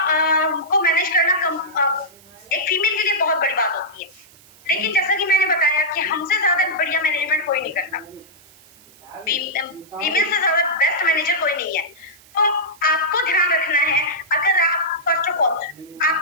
को मैनेज करना एक फीमेल के लिए बहुत बड़ी बात होती है। लेकिन जैसा कि मैंने बताया कि हमसे ज्यादा बढ़िया मैनेजमेंट कोई नहीं करता, फीमेल से ज्यादा बेस्ट मैनेजर कोई नहीं है। तो आपको ध्यान रखना है, अगर आप फर्स्ट ऑफ ऑल आप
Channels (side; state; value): right; noise; hiss, 26 dB below the sound